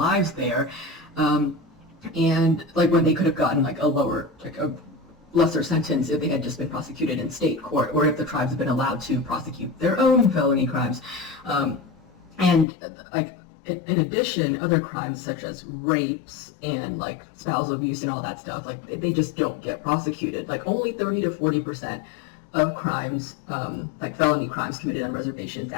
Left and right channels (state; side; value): drops out; right; at 12.7 s